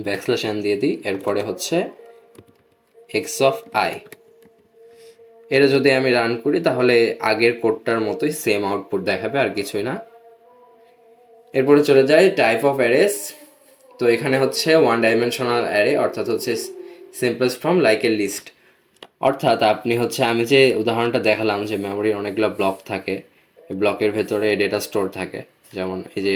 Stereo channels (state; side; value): identical; both; correlation 1.00